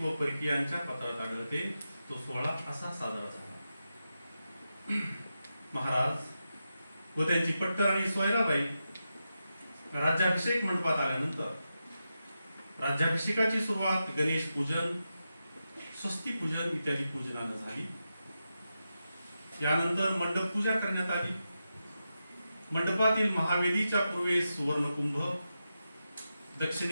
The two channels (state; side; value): inverted; both; correlation -0.89